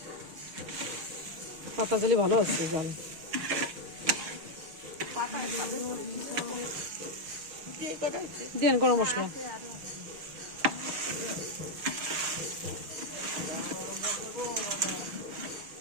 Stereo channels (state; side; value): late; left; 6.4 ms